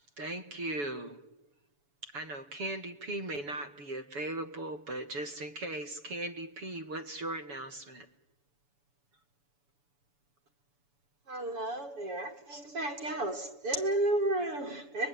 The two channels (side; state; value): left; late; 7.0 ms